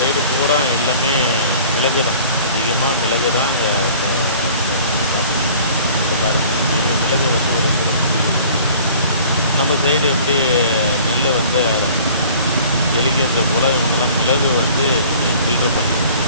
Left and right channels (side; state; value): both; inverted; correlation -0.49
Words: பூரா எல்லாமே மிளகு தான், அதிகமாக மிளகு தான் அங்கே இப்போ பாருங்கள். மிளகு வந்து ஒரு நம்ம சைடு எப்படி நெல் வந்து எலிக்கின்ற போல் இவங்கெல்லாம் மிளகு வந்து ஃபில்டர் பண்ணி